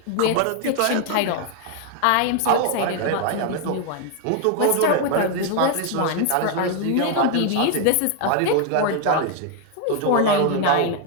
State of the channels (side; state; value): both; different; correlation 0.01